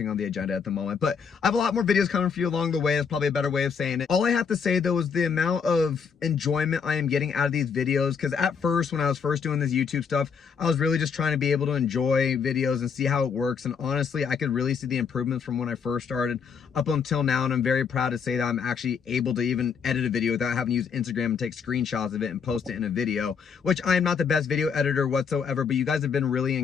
on the agenda at the moment. But I have a lot more videos coming for you along the way. That's probably a better way of saying it. All I have to say though is the amount of enjoyment I am getting out of these videos, because at first, when I was first doing this YouTube stuff, I was really just trying to be able to enjoy videos and see how it works, and honestly, I could really see the improvements from when I first started up until now, and I'm very proud to say that I'm actually able to even edit a video without having to use Instagram and take screenshots of it and post it in a video, which I am not the best video editor whatsoever, but you guys have been really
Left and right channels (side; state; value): right; quieter; 6.3 dB